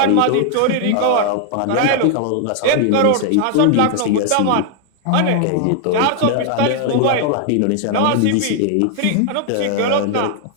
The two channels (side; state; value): both; different; correlation 0.00